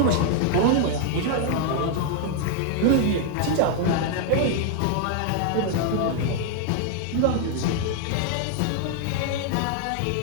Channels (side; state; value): both; different; correlation 0.00